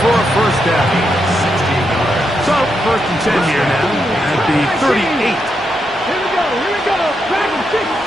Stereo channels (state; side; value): normal; both; correlation 0.83